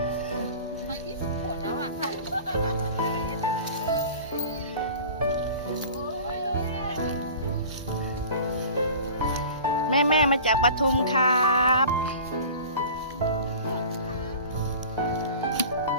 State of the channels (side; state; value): both; inverted; correlation -0.40